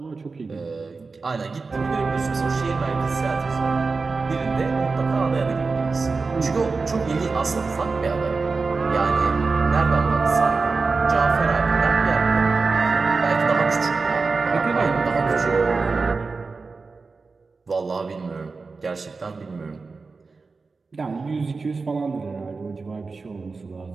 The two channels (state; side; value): quieter; left; 4.2 dB